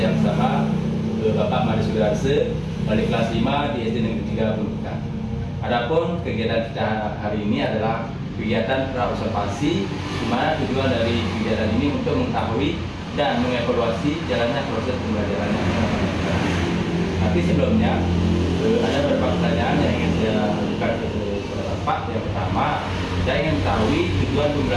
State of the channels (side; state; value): both; identical; correlation 1.00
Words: bersama Bapak Mari Sudarse, balik kelas 5 di SD Negeri 3 Buleleng. Adapun kegiatan kita hari ini adalah kegiatan pra-observasi, di mana tujuan dari kegiatan ini untuk mengetahui dan mengevaluasi jalannya proses pembelajaran. Tapi sebelumnya ada beberapa pertanyaan yang ingin saya ajukan kepada Bapak. Yang pertama, saya ingin mengetahui tujuan